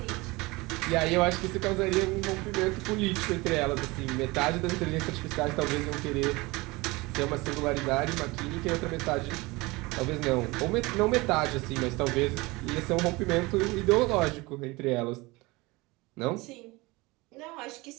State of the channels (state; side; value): quieter; left; 23.2 dB